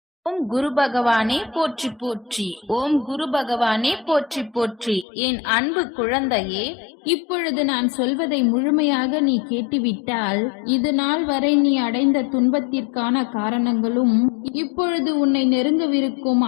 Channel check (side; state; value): right; drops out; at 5.1 s